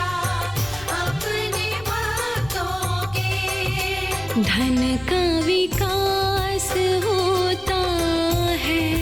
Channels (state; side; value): noise; left; rumble, 19 dB below the sound